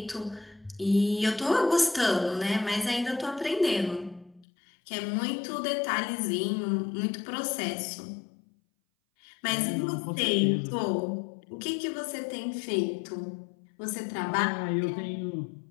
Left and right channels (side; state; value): right; drops out; at 4.5 s